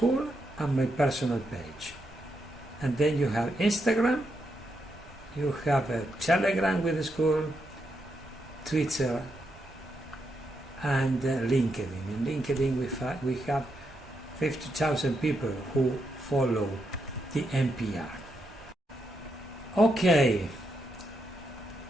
and my personal page. And then you have Instagram You have a Telegram with the school, Twitter, and LinkedIn. In LinkedIn we have 50,000 people who follow the NPR. Okay,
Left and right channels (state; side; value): normal; both; correlation 0.82